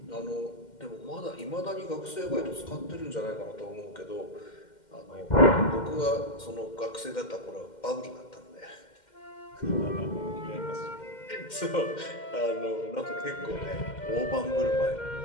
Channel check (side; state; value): right; late; 2.1 ms